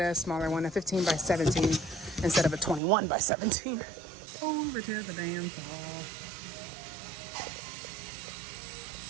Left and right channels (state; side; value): drops out; left; at 2.8 s